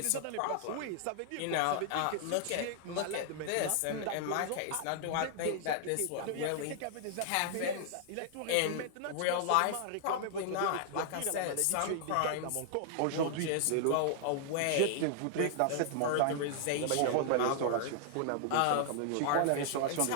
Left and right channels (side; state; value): both; different; correlation -0.01